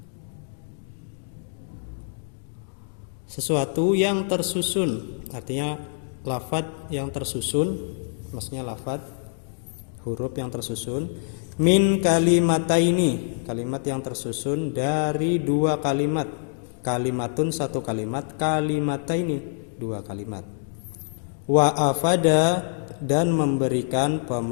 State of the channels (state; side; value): silent; right; digital silence